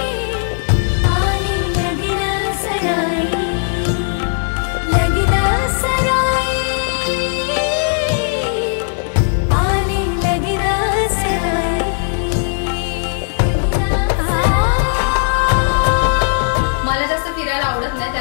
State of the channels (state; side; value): silent; right; 68 dB below the other